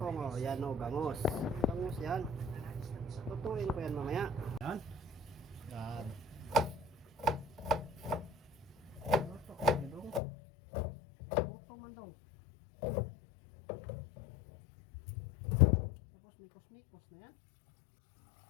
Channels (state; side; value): drops out; right; at 10.2 s